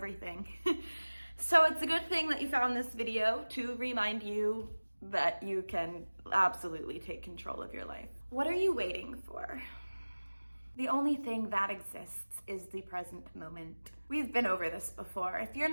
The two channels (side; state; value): both; inverted; correlation -1.00